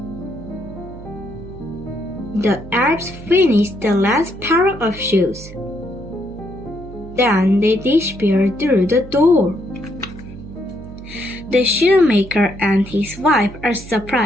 The elves finish the last pair of shoes. Then they disappear through the door. The shoemaker and his wife are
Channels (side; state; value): right; noise; hum, 15 dB below the sound